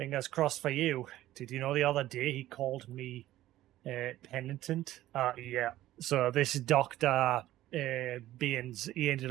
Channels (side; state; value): left; quieter; 14.6 dB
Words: crossed for you. Did you know the other day he called me penitent? Yeah. So this Dr. Baines, he